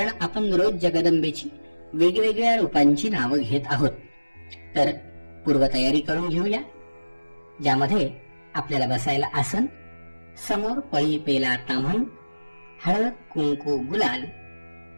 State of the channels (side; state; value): both; inverted; correlation -1.00